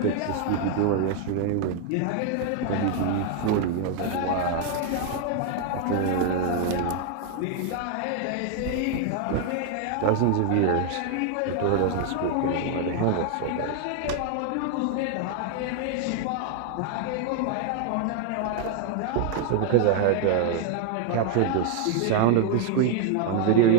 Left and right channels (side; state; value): both; different; correlation 0.00